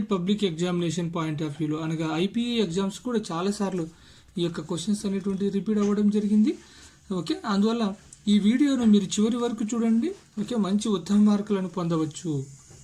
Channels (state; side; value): identical; both; correlation 1.00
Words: public examination point of వ్యూలో అనగా ఐపీఈ ఎగ్జామ్స్ కూడా చాలాసార్లు ఈ యొక్క క్వశ్చన్స్ అనేటువంటివి రిపీట్ అవ్వడం జరిగింది. అందువల్ల ఈ వీడియోను మీరు చివరి వరకు చూడండి. మంచి ఉత్తమ మార్కులను పొందవచ్చు.